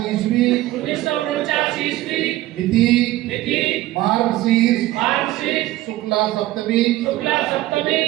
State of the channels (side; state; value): left; quieter; 16.3 dB